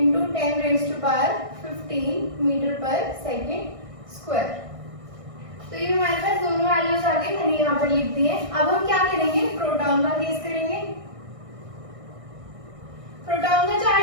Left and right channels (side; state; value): left; late; 1.6 ms